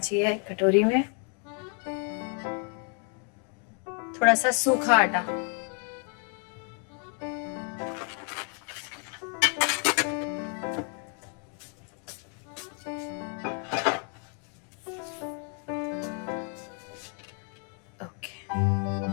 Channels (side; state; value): right; quieter; 39.7 dB